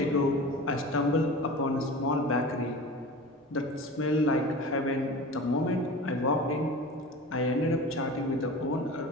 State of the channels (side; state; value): both; normal; correlation 0.35